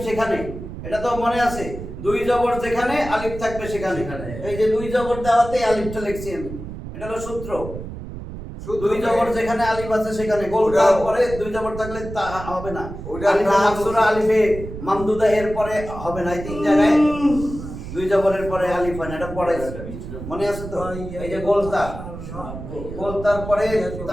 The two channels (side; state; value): right; noise; rumble, 10 dB below the sound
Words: সেখানে, এটা তো মনে আছে, দুই জবর যেখানে আলিফ থাকবে সেখানে। এই যে দুই জবর দেওয়াতে আলিফটা লিখছি আমি, এটা হলো সূত্র। দুই জবর যেখানে আলিফ আছে সেখানে গোল দেওয়ার পরে দুই জবর থাকলে তা হবে না। আলিফে মাকসুরা, আলিফে মামদুদা এর পরে হবে না। এই তিন জায়গায় দুই জবরের পরে আলিফ হয় না, এটা পরে মনে আছে তো? এই যে গোলতা, গোলতার পরে